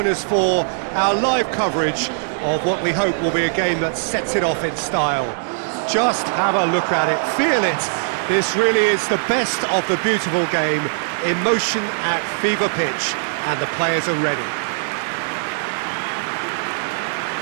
us for our live coverage of what we hope will be a game that sets it off in style. Just have a look at it, feel it. This really is the best of the beautiful game, emotion at fever pitch, and the players are ready.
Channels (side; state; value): left; silent; digital silence